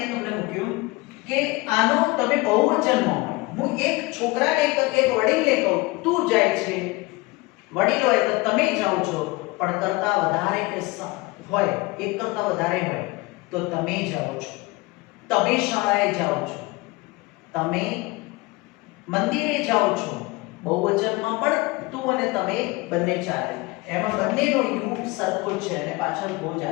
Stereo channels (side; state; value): right; quieter; 23.4 dB